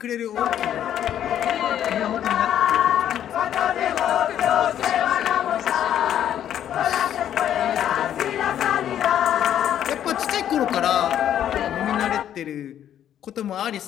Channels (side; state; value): right; quieter; 10.5 dB